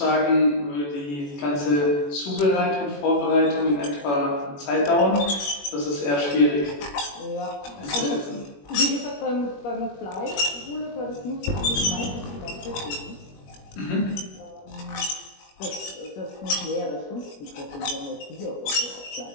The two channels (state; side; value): late; right; 21 ms